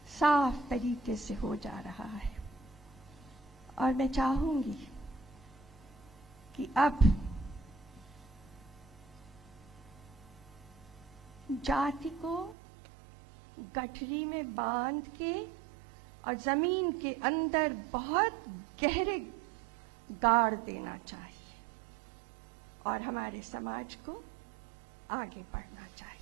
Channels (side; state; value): left; drops out; at 12.6 s